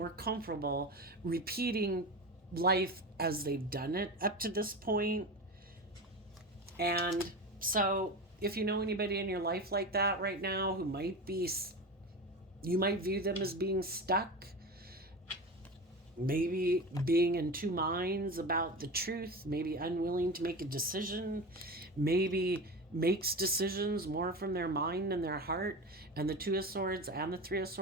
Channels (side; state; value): both; normal; correlation 0.26